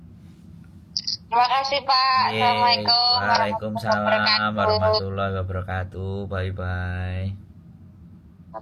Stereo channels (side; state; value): both; identical; correlation 1.00